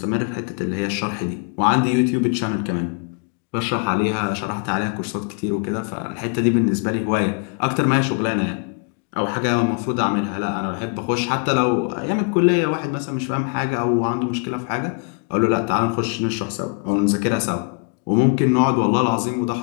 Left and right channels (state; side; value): quieter; right; 36.4 dB